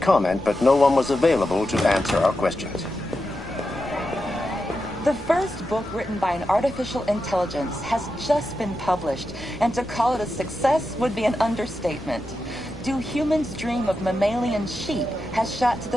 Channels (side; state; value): both; normal; correlation 0.89